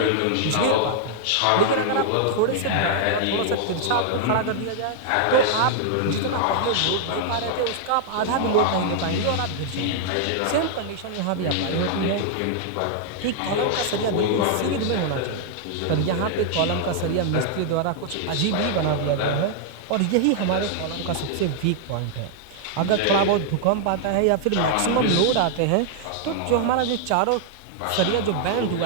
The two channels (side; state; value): both; different; correlation -0.01